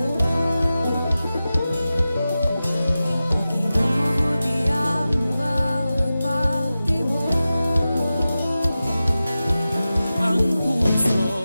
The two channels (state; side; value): inverted; both; correlation -0.94